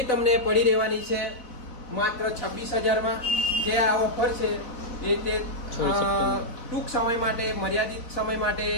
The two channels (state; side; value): late; right; 4.2 ms